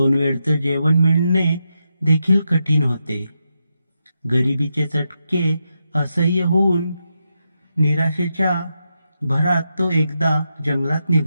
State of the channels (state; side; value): inverted; both; correlation -0.86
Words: वेळचं जेवण मिळणे देखील कठीण होते. गरिबीचे चटके असह्य होऊन निराशेच्या भरात तो एकदा जंगलात